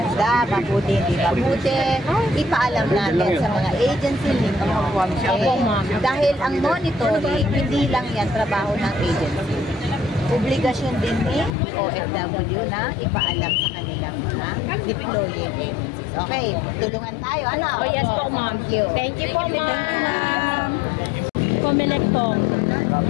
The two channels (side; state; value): right; drops out; at 11.5 s